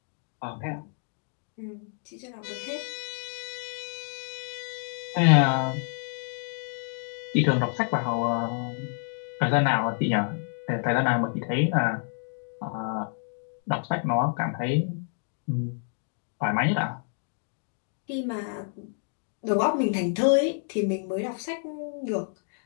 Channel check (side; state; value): right; silent; 59 dB below the other